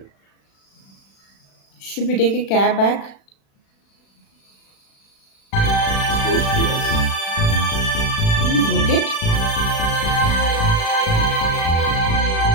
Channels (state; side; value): late; right; 36 ms